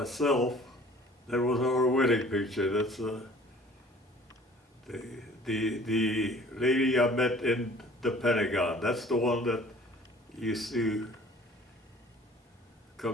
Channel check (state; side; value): normal; both; correlation 0.51